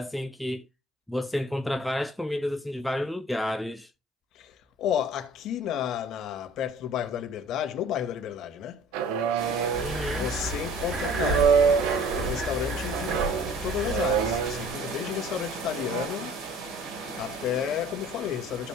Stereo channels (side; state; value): both; normal; correlation 0.50